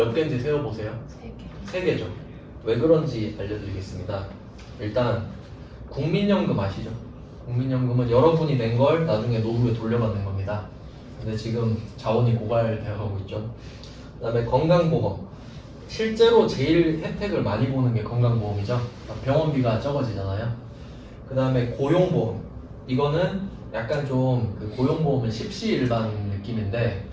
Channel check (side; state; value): both; identical; correlation 1.00